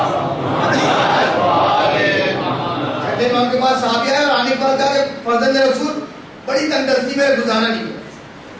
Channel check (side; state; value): both; identical; correlation 1.00